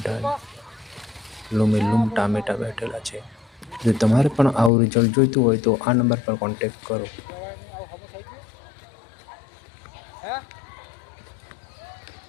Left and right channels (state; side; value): drops out; right; at 4.7 s